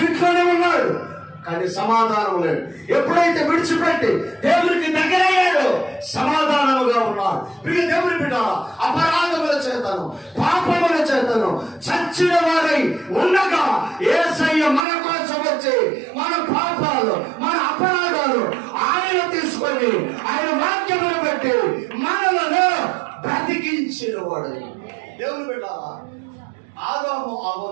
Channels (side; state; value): left; drops out; at 14.9 s